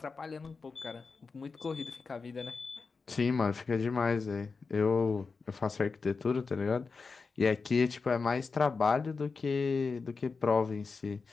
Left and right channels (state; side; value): quieter; right; 4.6 dB